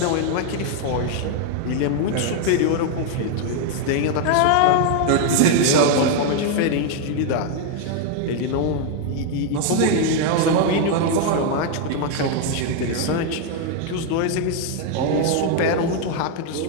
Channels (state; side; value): different; both; correlation 0.00